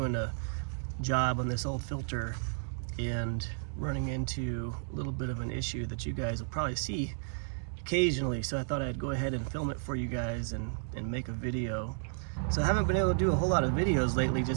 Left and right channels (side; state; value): left; silent; digital silence